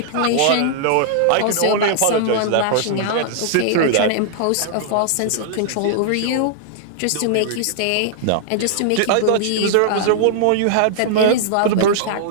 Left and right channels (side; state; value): both; different; correlation -0.01